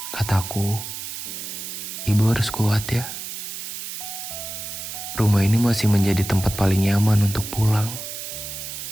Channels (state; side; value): noise; right; hiss, 8 dB below the sound